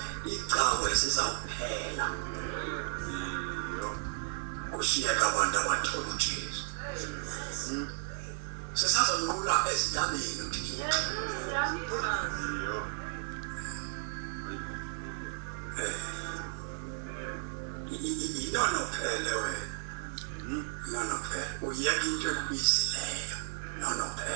Kushiyeka abantu abathola uJesu. Sesazonqula ezintabeni uthi inono phele wena. Nono phele uyeka into ekubisileyo. Nono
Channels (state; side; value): silent; left; 55 dB below the other